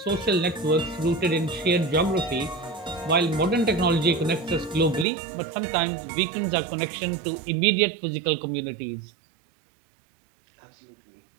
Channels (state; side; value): drops out; left; at 5.1 s